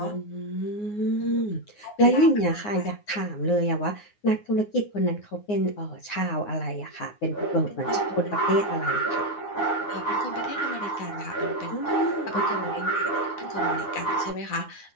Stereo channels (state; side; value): late; right; 9.7 ms